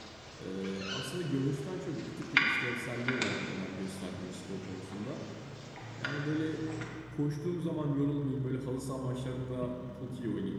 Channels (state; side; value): noise; left; rumble, 25 dB below the sound